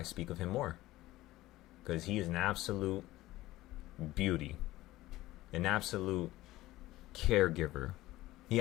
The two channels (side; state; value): right; quieter; 16.9 dB